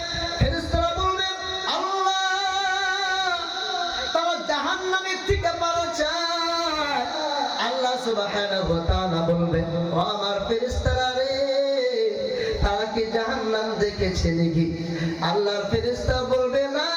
আল্লাহ সুবহানাহু ওয়া তাআলা বলবে, ও আমার ফেরেশতারা রে, তারা কি জাহান্নাম দেখেছে নাকি? আল্লাহর ফেরেশতা বলবে, না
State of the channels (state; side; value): identical; both; correlation 1.00